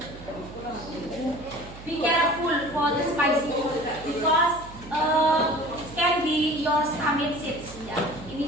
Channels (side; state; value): right; noise; hum, 16 dB below the sound